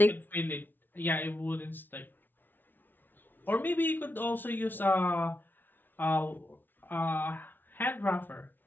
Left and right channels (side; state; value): right; late; 0.092 ms